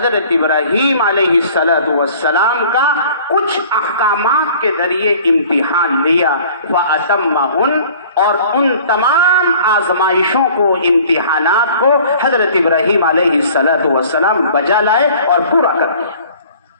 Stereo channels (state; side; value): inverted; both; correlation -0.50